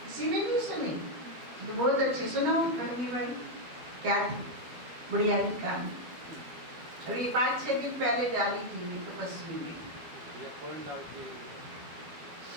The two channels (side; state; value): left; late; 12 ms